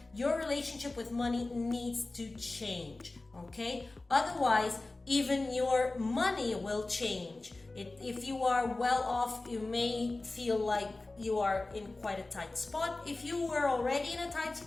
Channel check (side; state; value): right; quieter; 3.1 dB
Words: your relationship with money needs to change, okay? Otherwise, even your money will change. If you are well off, you may feel like you are in quite a tight spot. If you were already in a tight